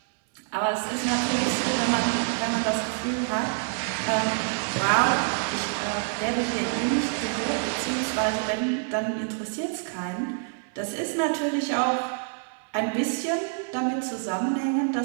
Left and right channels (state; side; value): silent; left; 60 dB below the other